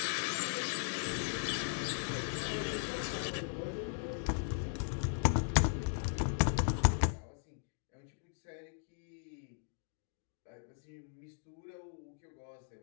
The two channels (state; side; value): silent; right; digital silence